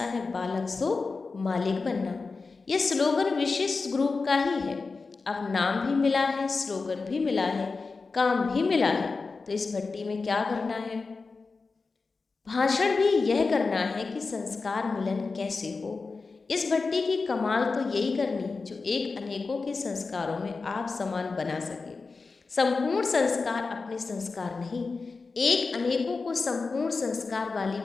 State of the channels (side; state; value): right; quieter; 4.2 dB